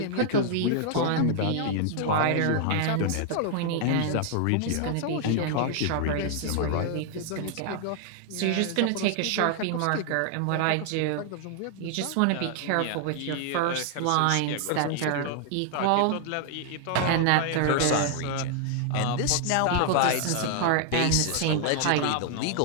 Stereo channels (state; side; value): different; both; correlation 0.00